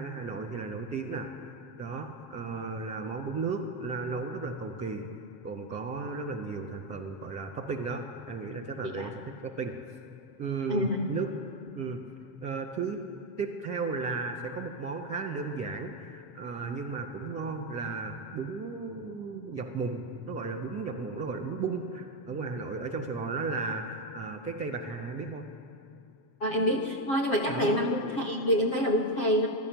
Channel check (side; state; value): right; late; 7.5 ms